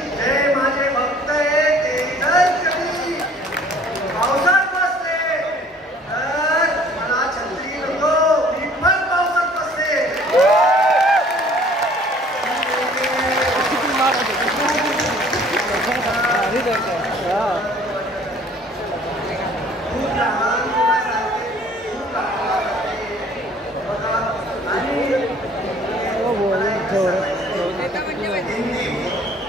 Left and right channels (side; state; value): both; normal; correlation 0.54